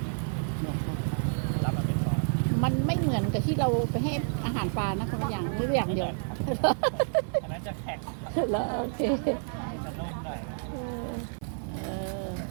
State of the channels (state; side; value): silent; left; 58 dB below the other